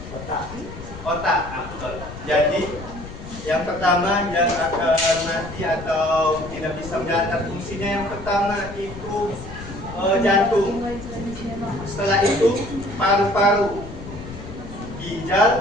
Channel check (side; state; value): left; noise; rumble, 12 dB below the sound